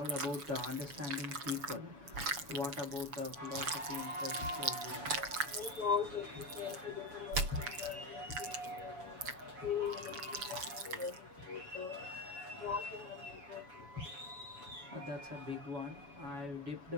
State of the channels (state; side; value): late; left; 7.0 ms